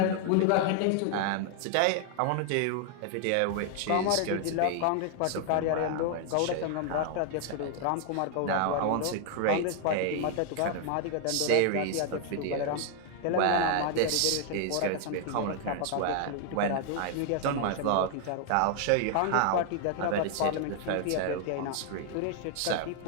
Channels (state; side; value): different; both; correlation 0.00